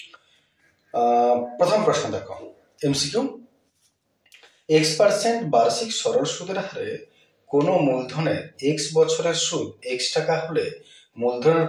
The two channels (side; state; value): both; identical; correlation 1.00